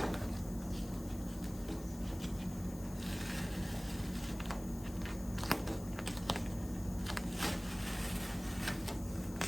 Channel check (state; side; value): noise; left; hiss, 16 dB below the sound